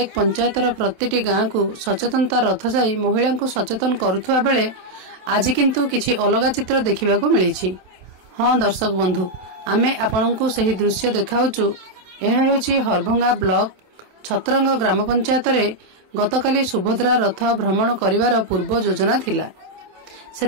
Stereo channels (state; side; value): late; left; 27 ms